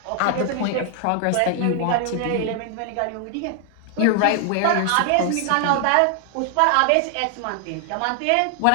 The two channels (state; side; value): different; both; correlation 0.00